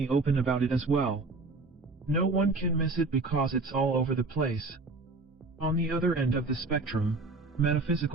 open about it as well. No one can miss it because it's all over the place. On the other end of the spectrum,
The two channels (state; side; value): quieter; left; 3.5 dB